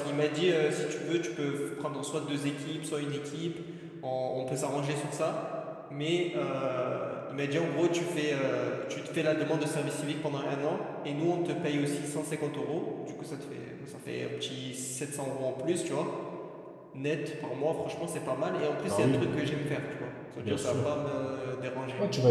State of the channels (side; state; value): both; identical; correlation 1.00